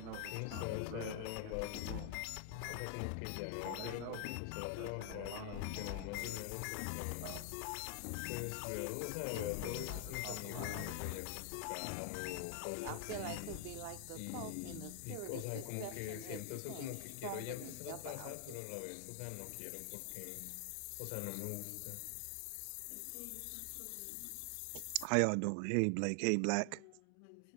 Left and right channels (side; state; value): both; different; correlation 0.00